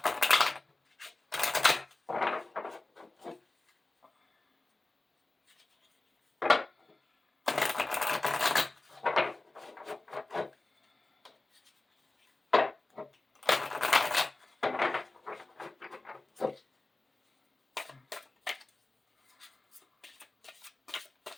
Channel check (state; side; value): quieter; right; 3.0 dB